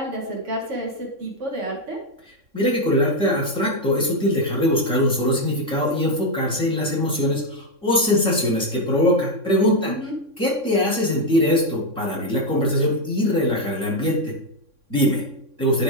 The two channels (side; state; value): left; late; 3.6 ms